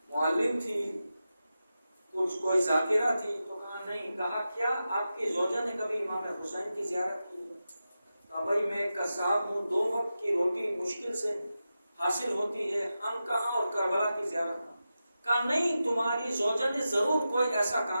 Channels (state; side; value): inverted; both; correlation -0.91